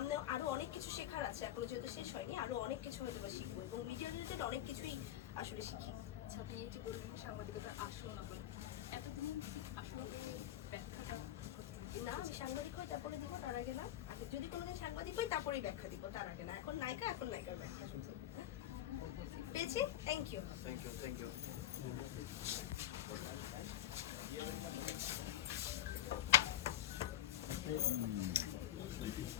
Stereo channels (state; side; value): quieter; right; 12.0 dB